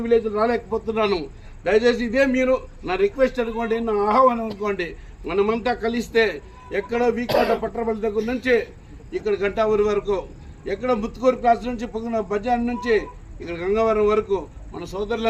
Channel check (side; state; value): both; identical; correlation 1.00